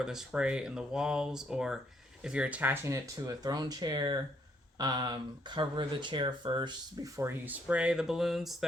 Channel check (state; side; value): normal; both; correlation 0.70